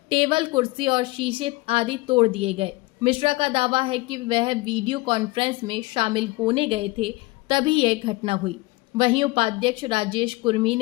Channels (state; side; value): quieter; right; 22.3 dB